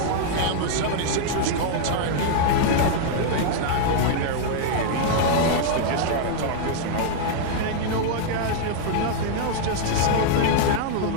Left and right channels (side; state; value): both; different; correlation -0.01